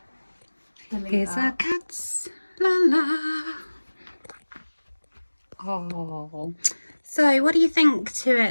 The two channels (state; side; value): inverted; both; correlation -1.00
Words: Here's our cats, la la. Oh. So what do you think to